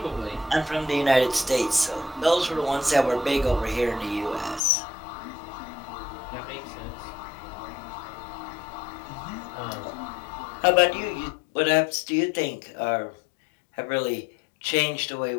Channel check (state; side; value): drops out; right; at 4.6 s